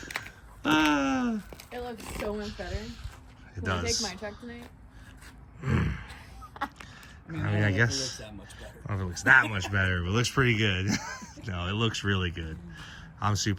It looks so much better. It Can I does. take my truck tonight? I mean, I don't know if it guess- looks that much better. I don't know if it looks that much better, but it looks pretty good. No, it looks really good. I'm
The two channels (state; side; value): identical; both; correlation 1.00